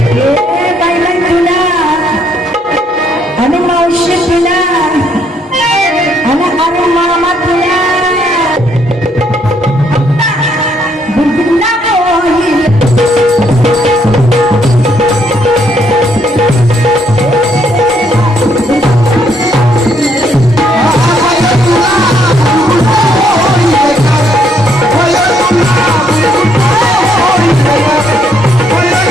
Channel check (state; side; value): normal; both; correlation 0.71